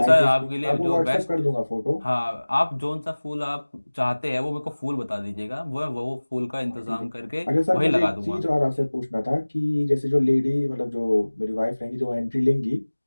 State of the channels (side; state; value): both; inverted; correlation -1.00